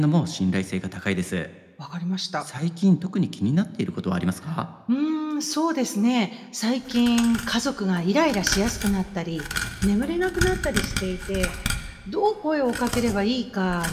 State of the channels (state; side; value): identical; both; correlation 1.00